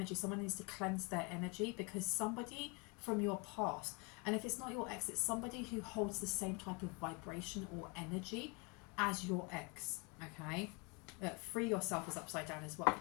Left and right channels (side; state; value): right; quieter; 30.5 dB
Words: Someone needs to cleanse their energy because somebody from your past, and if it's not your ex, it's somebody who holds the same type of vibration or energy as your ex, okay? Free yourself is upside down as well.